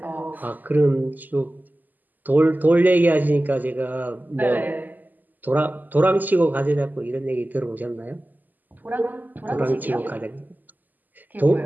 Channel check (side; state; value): left; late; 0.085 ms